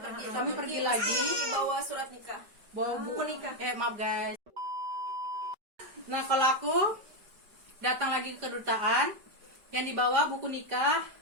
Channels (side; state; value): left; late; 5.0 ms